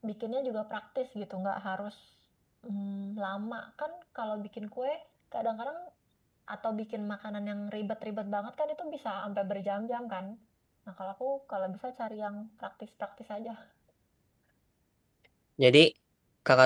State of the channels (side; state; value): both; identical; correlation 1.00